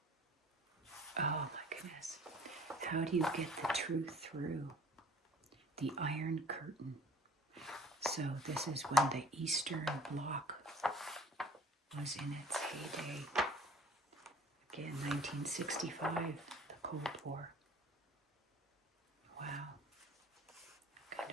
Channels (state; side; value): normal; both; correlation 0.50